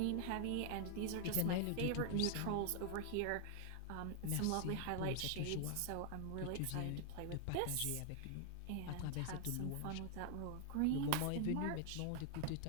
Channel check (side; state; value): both; different; correlation 0.00